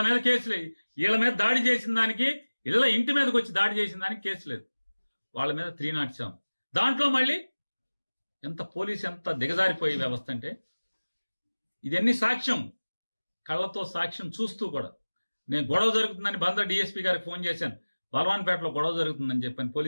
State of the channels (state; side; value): inverted; both; correlation -1.00